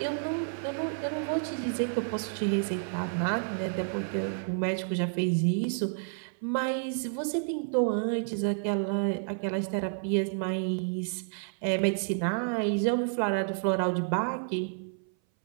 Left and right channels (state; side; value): silent; left; 58 dB below the other